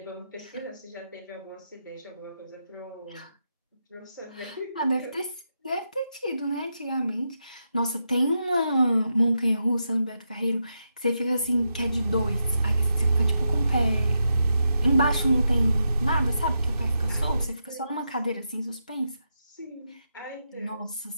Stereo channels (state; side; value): inverted; both; correlation -0.85